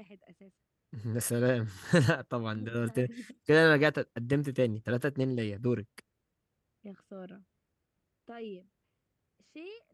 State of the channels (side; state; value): both; identical; correlation 1.00